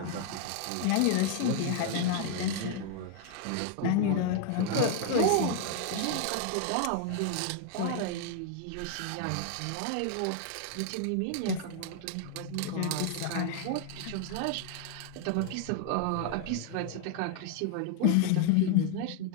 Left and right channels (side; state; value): both; different; correlation 0.01